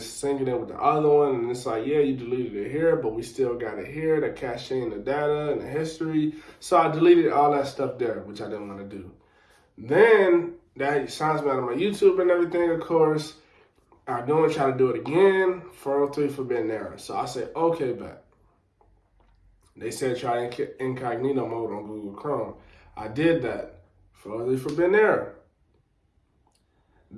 syncing it with the other one. And it's like, yeah, you deleted it here, but we still got it here, the caching, the data, and the history. So I deleted all that stuff there, which I didn't want to do. Then that signs me out of my YouTube and everything, of course. I don't try to do it again, 403 forbidden error. So I said, okay, bet. They said try incognito mode on Google Chrome. I did that, 403 forbidden error.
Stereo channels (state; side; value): identical; both; correlation 1.00